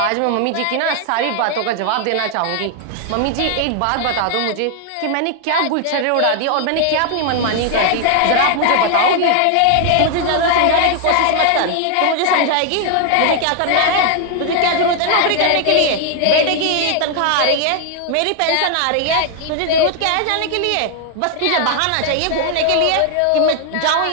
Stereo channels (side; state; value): both; different; correlation 0.00